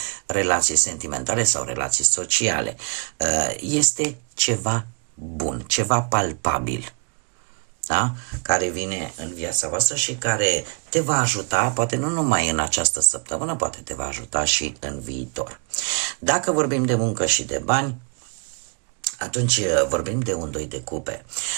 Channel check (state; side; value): quieter; left; 39.5 dB